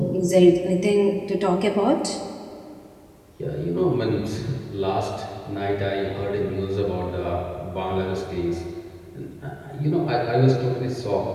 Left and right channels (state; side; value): identical; both; correlation 1.00